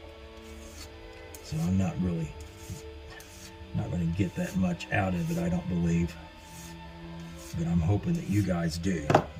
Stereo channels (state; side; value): identical; both; correlation 1.00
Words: So I'm not going to get that much out of it, I don't believe, but I'm hoping that you guys do.